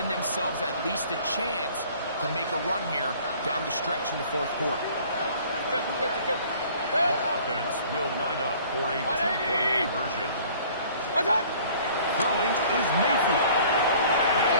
themselves at least a chance to make a run here down the stretch in the 4th quarter. The offense will line up for a 2-point conversion. Throwing is Mayfield. That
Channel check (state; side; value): inverted; both; correlation -0.52